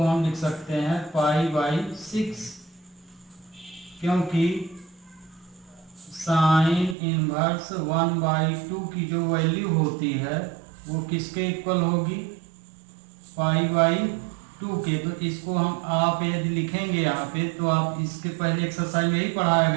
लिख सकते हैं π/6, क्योंकि साइन इनवर्स 1/2 की जो वैल्यू होती है वो किसके इक्वल होगी? π/2 के। तो इसको हम आप यदि लिखेंगे यहाँ पे, तो आप इसके पहले एक्सरसाइज में ही पढ़ाया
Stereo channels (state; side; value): drops out; left; at 7.0 s